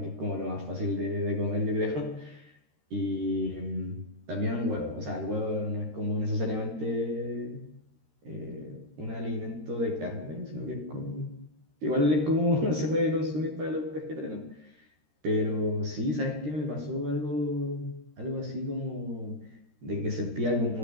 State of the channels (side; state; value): left; late; 13 ms